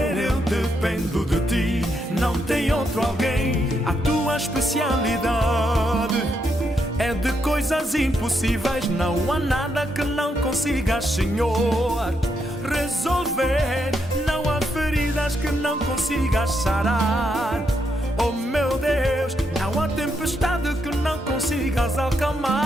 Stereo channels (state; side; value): normal; both; correlation 0.79